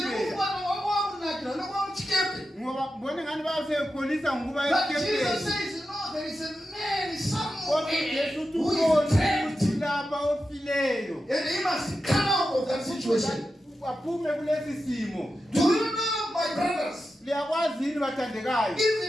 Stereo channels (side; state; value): both; normal; correlation 0.90